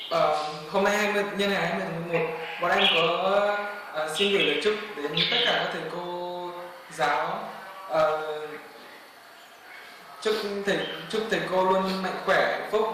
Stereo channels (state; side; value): identical; both; correlation 1.00